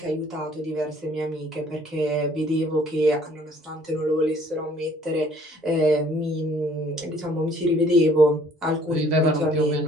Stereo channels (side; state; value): both; normal; correlation 0.58